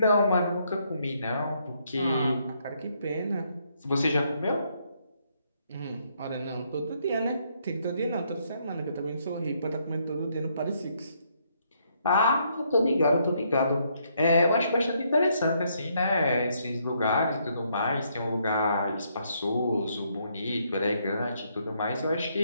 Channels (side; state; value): both; inverted; correlation -0.73